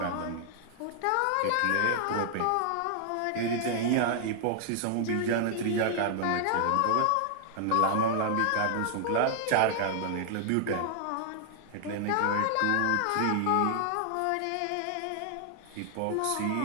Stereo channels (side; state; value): both; different; correlation -0.01